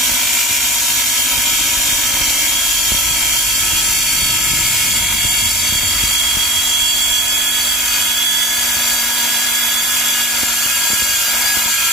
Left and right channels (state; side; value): normal; both; correlation 0.35